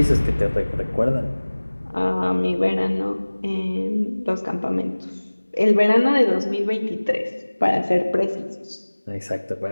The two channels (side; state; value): both; inverted; correlation -1.00